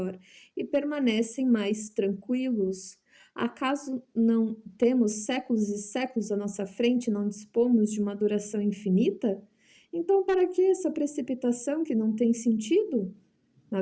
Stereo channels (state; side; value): identical; both; correlation 1.00